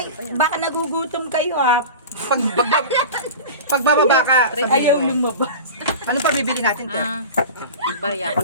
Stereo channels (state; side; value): inverted; both; correlation -0.32